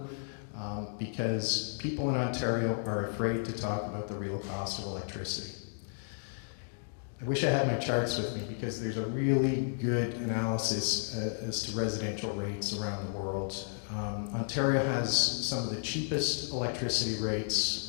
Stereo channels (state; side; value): silent; right; digital silence